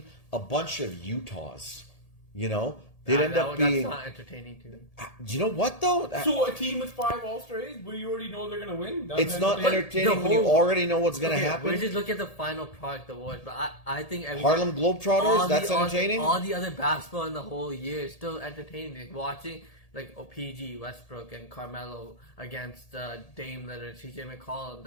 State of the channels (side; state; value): right; late; 1.8 ms